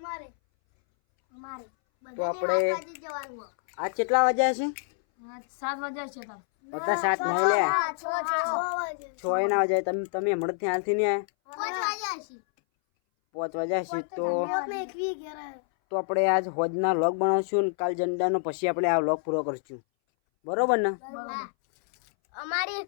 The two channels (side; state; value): right; silent; 60 dB below the other